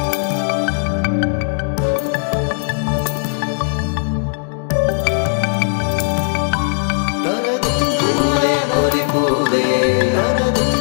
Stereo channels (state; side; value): silent; right; digital silence